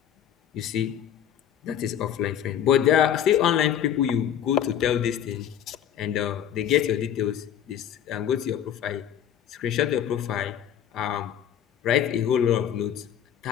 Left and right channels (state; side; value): quieter; right; 9.9 dB